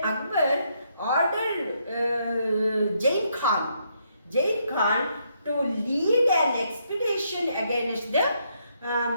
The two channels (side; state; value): both; inverted; correlation -0.75